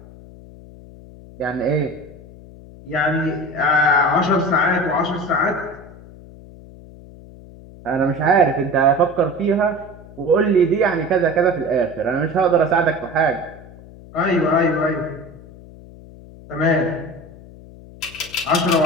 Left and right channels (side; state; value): left; noise; hum, 19 dB below the sound